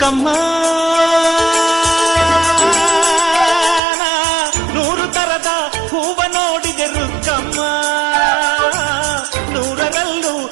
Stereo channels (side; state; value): left; drops out; at 3.8 s